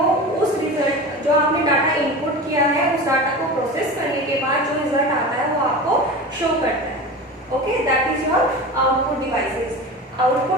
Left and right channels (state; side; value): normal; both; correlation 0.31